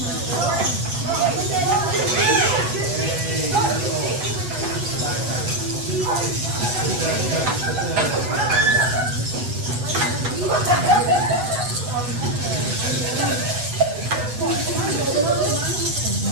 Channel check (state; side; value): late; left; 8.2 ms